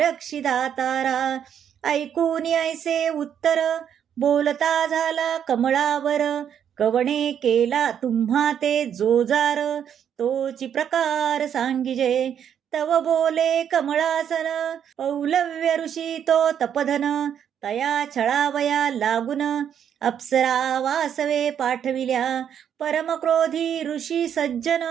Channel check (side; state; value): left; quieter; 8.8 dB